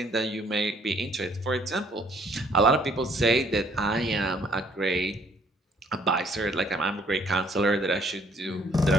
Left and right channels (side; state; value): both; normal; correlation 0.63